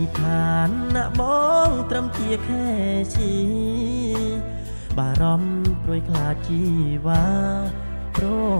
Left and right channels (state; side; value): inverted; both; correlation -1.00